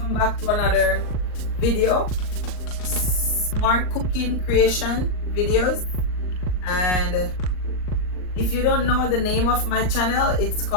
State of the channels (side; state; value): right; late; 39 ms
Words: back to another video. Smart cooking creation videos. And if you don't know the name of my channel, it's